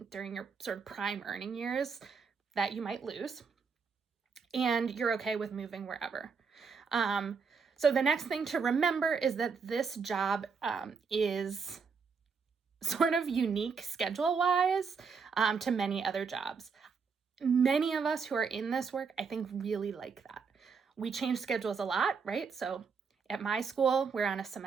during your sort of prime earning years that you might lose, and you're okay with moving wherever. So the next thing to remember is that this job is sort of unique schedule-wise to many other jobs. Many of us who are in this work, I think, really like that. We change schedules a lot, right? So at my school, we're on a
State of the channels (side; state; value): left; quieter; 5.6 dB